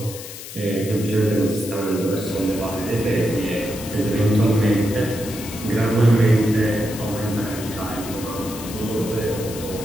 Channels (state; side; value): noise; left; hiss, 12 dB below the sound